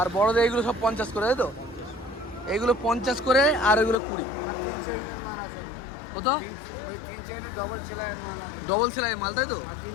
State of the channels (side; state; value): right; drops out; at 4.0 s